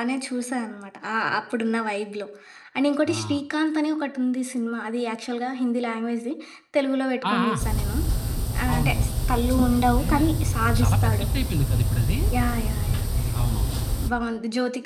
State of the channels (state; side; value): identical; both; correlation 1.00